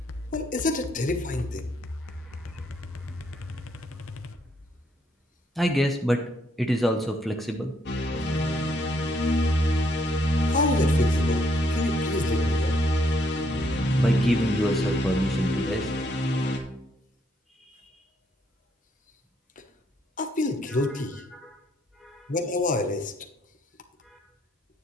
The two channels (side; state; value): both; normal; correlation 0.72